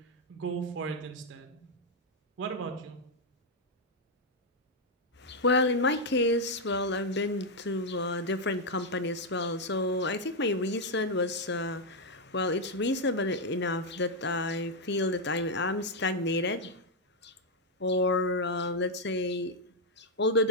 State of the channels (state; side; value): normal; both; correlation 0.00